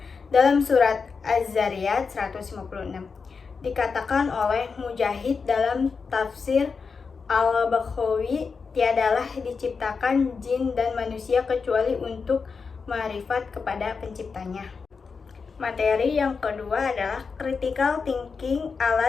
Dalam surat Az-Zariyat 156 dikatakan oleh Mujahid dalam tafsir Al-Baghawi, tiadalah diciptakan jin dan manusia kecuali untuk ma'rifat kepada penciptanya. Materi yang kedua adalah critical thinking,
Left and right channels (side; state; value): right; quieter; 5.2 dB